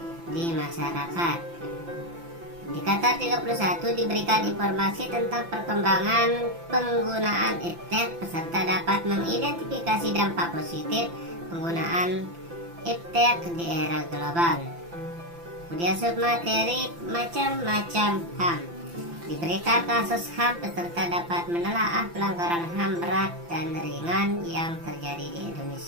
di masyarakat. Indikator 31, diberikan informasi tentang perkembangan penggunaan iptek. Peserta dapat mengidentifikasi dampak positif penggunaan iptek di era global. Kemudian submateri macam-macam HAM. Diberikan kasus HAM, peserta dapat menelaah pelanggaran HAM berat dan ringan yang terjadi di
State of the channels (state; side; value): late; left; 5.9 ms